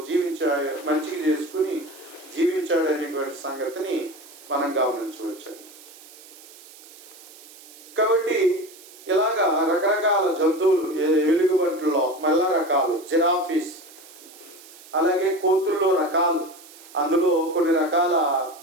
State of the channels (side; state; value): right; noise; hiss, 20 dB below the sound